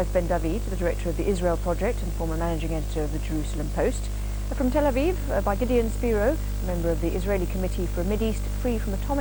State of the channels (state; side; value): identical; both; correlation 1.00